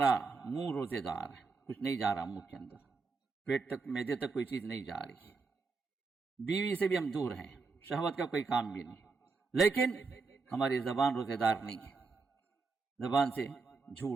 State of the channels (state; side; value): quieter; left; 4.4 dB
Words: منہ روزے دار ہے، کچھ نہیں جا رہا منہ کے اندر، پیٹ تک معدے تک کوئی چیز نہیں جا رہی. بیوی سے بھی ہم دور ہیں، شہوت کا کوئی کام بھی نہیں. لیکن ہماری زبان روزے دار نہیں ہے. زبان سے